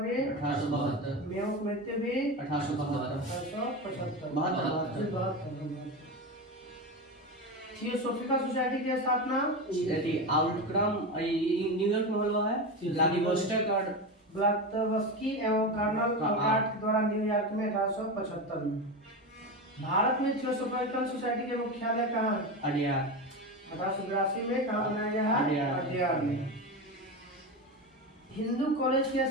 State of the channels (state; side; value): normal; both; correlation 0.20